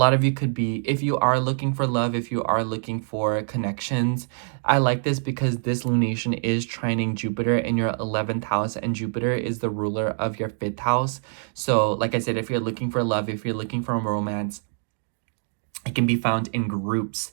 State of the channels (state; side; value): silent; left; digital silence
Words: of you could be, if you are looking for love, if you are looking for connections, I like this because this lunation is trining Jupiter in your 11th house, and Jupiter is the ruler of your 5th house. So like I said, if you're looking for love, if you're looking for romance, it can be found in groups.